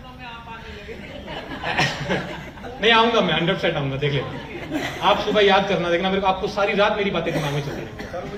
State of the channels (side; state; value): both; identical; correlation 1.00